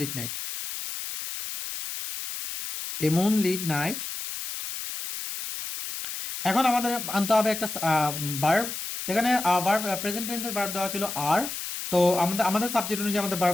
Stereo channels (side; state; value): left; noise; hiss, 6 dB below the sound